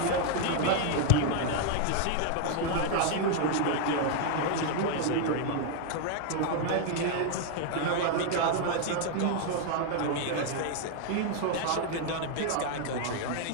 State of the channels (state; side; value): different; both; correlation 0.00